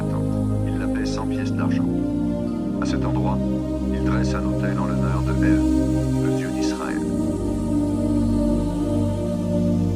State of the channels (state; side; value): identical; both; correlation 1.00